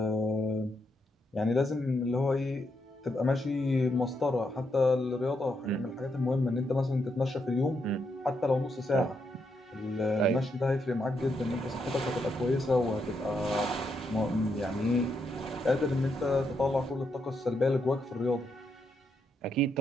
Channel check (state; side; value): normal; both; correlation 0.80